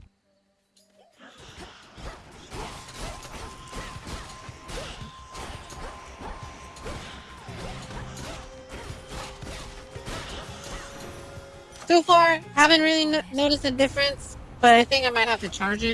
So far, haven't really noticed a difference, but I think I might have to charge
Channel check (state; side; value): identical; both; correlation 1.00